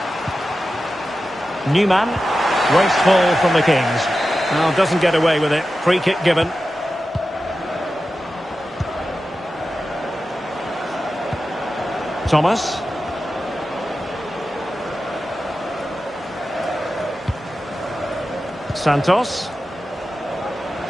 Newman. Wasteful from the Kings. Well, doesn't get away with it. Free kick given. Thomas. Santos.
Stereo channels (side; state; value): both; normal; correlation 0.93